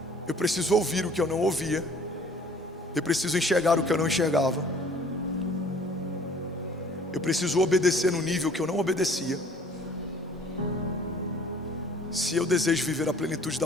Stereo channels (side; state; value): both; normal; correlation 0.53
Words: Eu preciso ouvir o que eu não ouvia. Eu preciso enxergar o que eu não enxergava. Eu preciso obedecer no nível que eu não obedecia. Se eu desejo viver a plenitude da